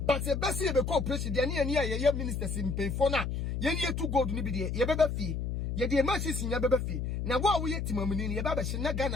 but e besi e be ko president ne ya ye ministers mpefo na ye ne etu gold ni bi de ye beba fie ye de ma sisi nya beba fie na wo ye timamuni ne ye baba hye na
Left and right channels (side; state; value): left; noise; hum, 2 dB below the sound